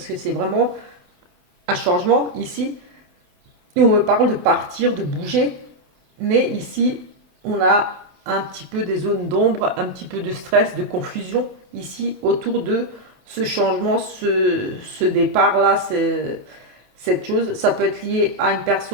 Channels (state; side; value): late; left; 27 ms